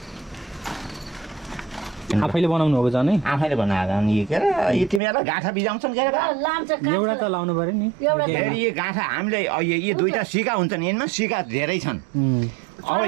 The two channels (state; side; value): drops out; left; at 5.0 s